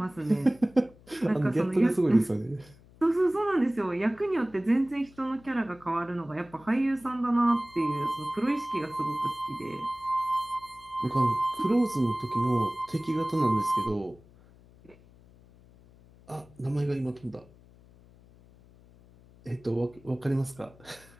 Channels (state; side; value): noise; left; hum, 25 dB below the sound